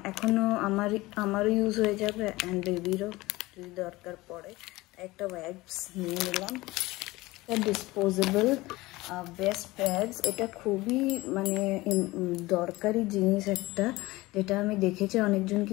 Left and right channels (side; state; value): right; quieter; 20.0 dB